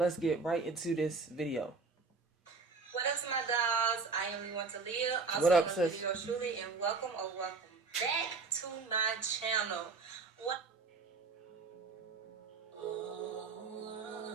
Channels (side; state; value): left; quieter; 4.4 dB